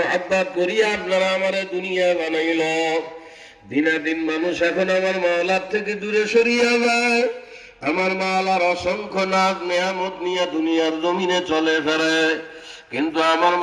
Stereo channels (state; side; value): identical; both; correlation 1.00